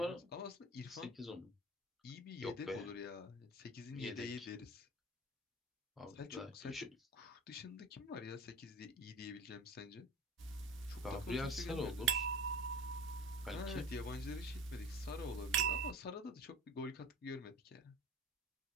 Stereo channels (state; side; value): normal; both; correlation 0.37